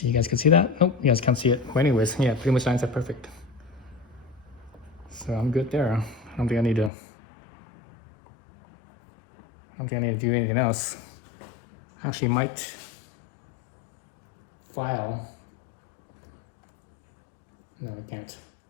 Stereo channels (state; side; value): drops out; right; at 6.9 s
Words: you guys can see that? Nope, you guys can't see it. Well, anyways, yeah, pretty much lines up perfect. So I'm good there. I don't think I need to do anything else. Actually, might file. No, I can't.